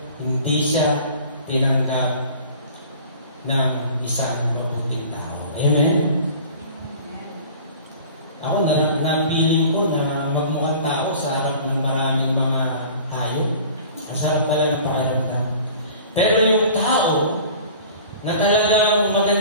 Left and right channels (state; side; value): inverted; both; correlation -0.44